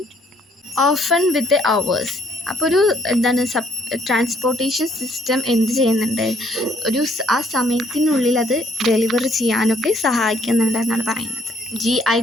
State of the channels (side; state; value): both; normal; correlation 0.66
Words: often with hours. അപ്പോൾ ട്രാൻസ്പോർട്ടേഷൻ സിസ്റ്റം എന്ത് ചെയ്യുന്നുണ്ട്? ആ സമയത്തിനുള്ളിൽ അത് ഡെലിവർ ചെയ്യാനൊക്കെ സഹായിക്കുന്നുണ്ട് എന്നാണ് പറയുന്നത്.